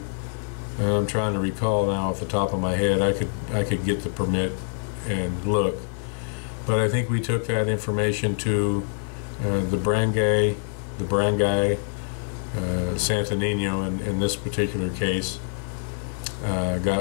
I'm trying to recall now off the top of my head. I could get the permit and look, but I think we took that information to the barangay, Santo Nino in this particular case.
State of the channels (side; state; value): right; silent; digital silence